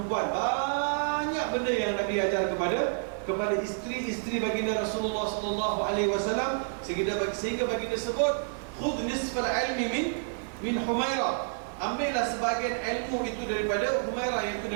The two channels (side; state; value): left; silent; 58 dB below the other